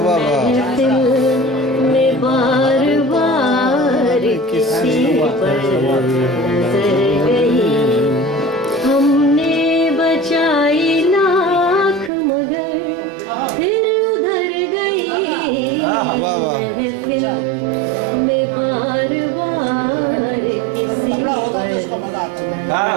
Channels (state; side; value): drops out; left; at 12.1 s